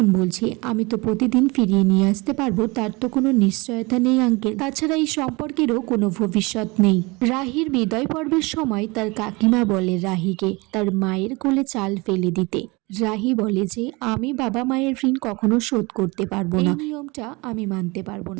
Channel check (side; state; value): left; quieter; 25.4 dB